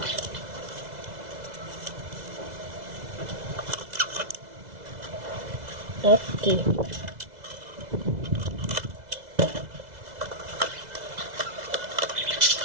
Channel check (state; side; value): late; left; 2.0 ms